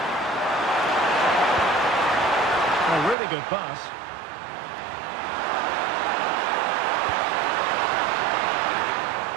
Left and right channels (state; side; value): drops out; left; at 3.2 s